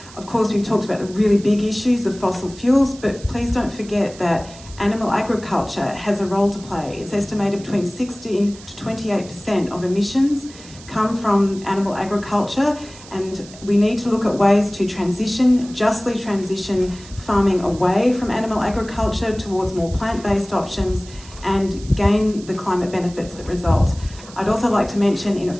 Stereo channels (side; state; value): right; noise; hiss, 19 dB below the sound